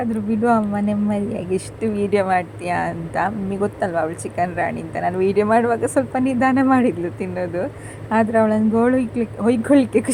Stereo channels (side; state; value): both; identical; correlation 1.00